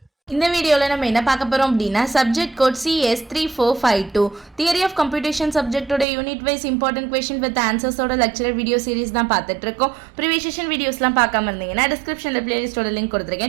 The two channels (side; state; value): left; drops out; at 6.1 s